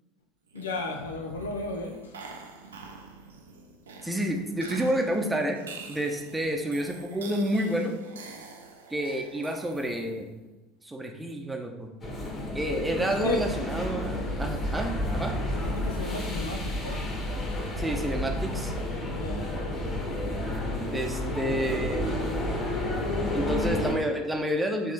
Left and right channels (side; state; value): both; normal; correlation 0.57